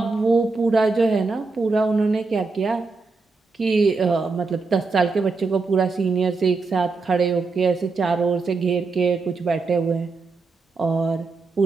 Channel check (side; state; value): left; quieter; 4.1 dB